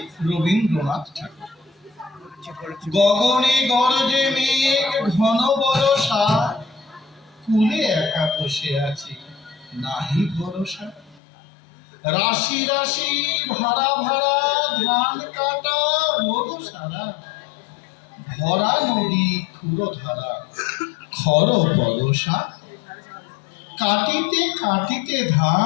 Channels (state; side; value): drops out; right; at 11.2 s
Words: রবীন্দ্রনাথ ঠাকুর। গগনে গরজে মেঘ ঘন বরষা, কুলে একা বসে আছি নাহি ভরসা। রাশি রাশি ভাড়া ভাড়া ধান কাটা রোদ সারা, ভরা নদী ক্ষুরো ধারা খর বরষা। কাটিতে কাটিতে